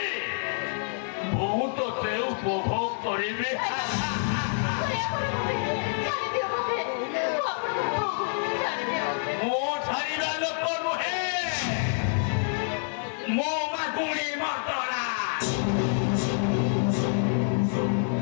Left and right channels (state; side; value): silent; right; digital silence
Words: बहुत ते उपभोग करिबे मो छाड़ीबा लोक नुहे मो मागुणी मर्दरा